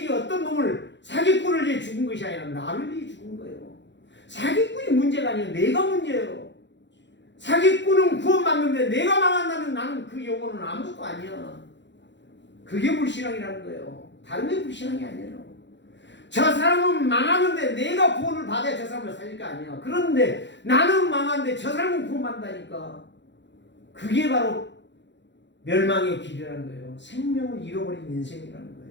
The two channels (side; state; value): right; late; 0.52 ms